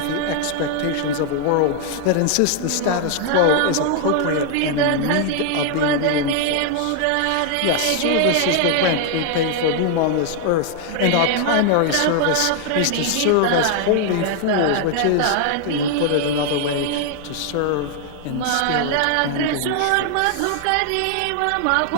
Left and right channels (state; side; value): different; both; correlation 0.00